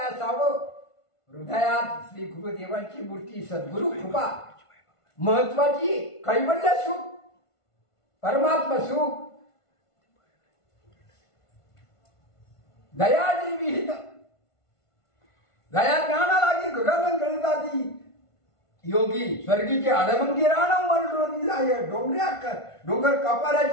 असावं हृदयात श्री गुरुदेवांची मूर्ती सद्गुरु कृपा महत्वाची कैवल्य सुख परमात्मा सुख दयाजी विहित दया ज्ञाना लागी गगन गणिताती योगी स्वर्गीचे आडमंगी राणव मरडोनी जाय डोंगर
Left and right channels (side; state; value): right; late; 1.5 ms